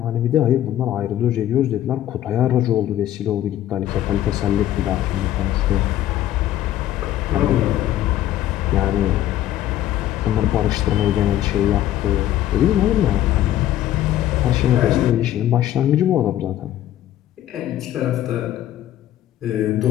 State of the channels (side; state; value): right; quieter; 12.7 dB